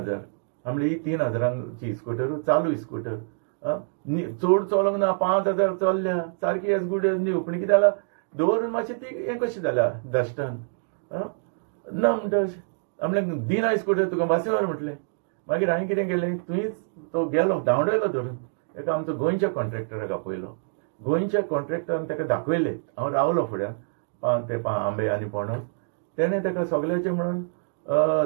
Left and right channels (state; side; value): silent; left; digital silence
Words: म्हणलें ही 3000ची स्कूटर चालू स्कूटर चड चलोंक ना 5000 चल्ल्या सारकी एज गूड एज न्यू पूण कितें जालां दवरून मातशें ती हें कशी जाल्या डस्टान ना म्हणटा अशें म्हणलें दिना स्कूटर तुका बसी व्हर म्हटलें मागीर हांवें कितें केलें तुवेंच तो गेलो धांवडयलो धरून एका आमचो गोंयच्या कॉन्ट्रॅक्टराक आपयलो गोंयच्या कॉन्ट्रॅक्टरान ताका दाखयलें हांव रावलो फुड्यान ते आंबे आनी पणस तेणें ताका सगळ्याचें म्हणून